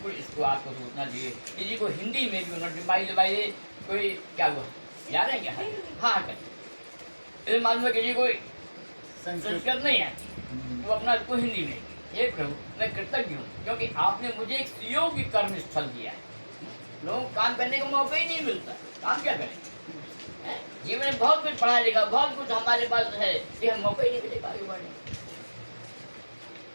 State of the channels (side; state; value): both; inverted; correlation -1.00